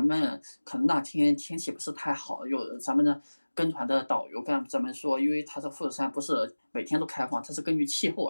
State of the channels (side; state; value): both; inverted; correlation -1.00